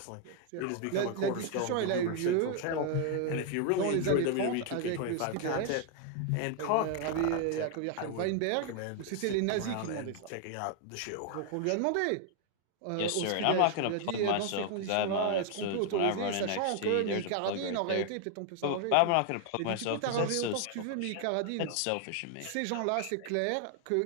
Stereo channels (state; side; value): different; both; correlation 0.00